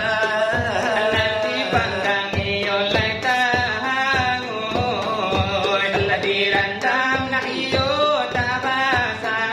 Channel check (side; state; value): both; identical; correlation 1.00